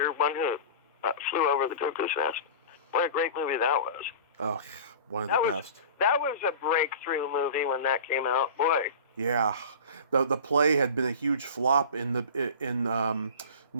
One Who Flew Over the Cuckoo's Nest. What a great movie that was. Oh, one of the best. That was a breakthrough movie when that came out, boy. Yeah, the play had been a huge flop in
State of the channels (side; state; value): both; inverted; correlation -0.37